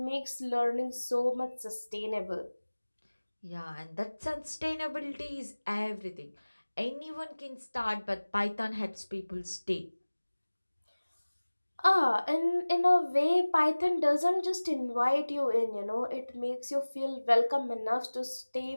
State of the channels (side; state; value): both; inverted; correlation -1.00